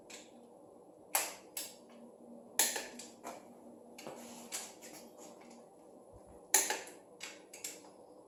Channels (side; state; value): both; identical; correlation 1.00